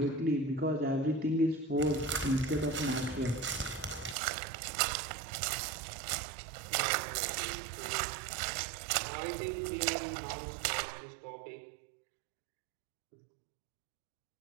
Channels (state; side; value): drops out; left; at 4.2 s